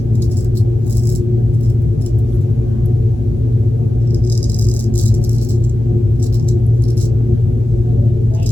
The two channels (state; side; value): normal; both; correlation 0.94